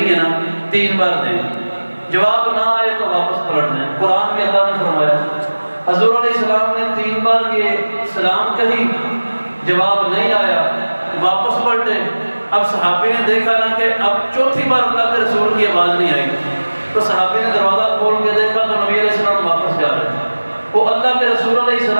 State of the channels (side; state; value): both; inverted; correlation -1.00